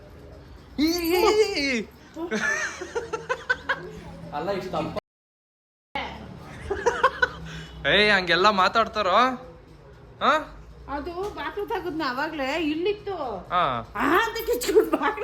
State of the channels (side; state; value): both; identical; correlation 1.00